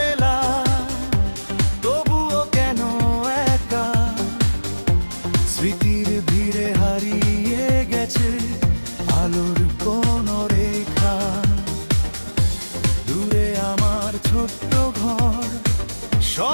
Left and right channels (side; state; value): both; inverted; correlation -1.00